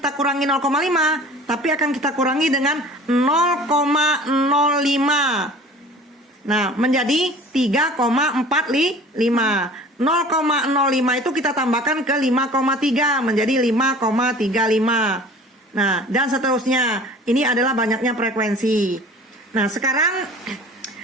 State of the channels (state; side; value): normal; both; correlation 0.44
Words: kurangi 0,5, tapi akan kita kurangi dengan 0,05. Nah, menjadi 3,45. 0,05 itu kita tambahkan ke 5,3 menjadi 5,35. Nah, dan seterusnya. Ini adalah banyaknya frekuensi. Nah, sekarang